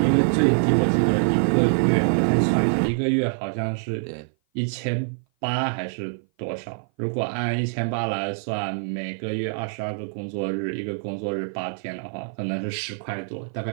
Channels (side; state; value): left; silent; 57 dB below the other